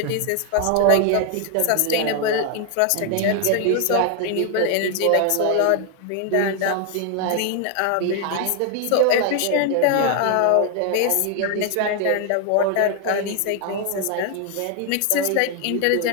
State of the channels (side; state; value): both; different; correlation 0.00